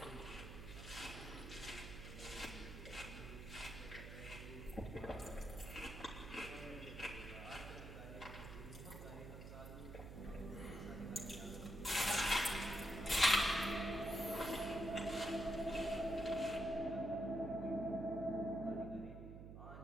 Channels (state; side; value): noise; right; hum, 10 dB below the sound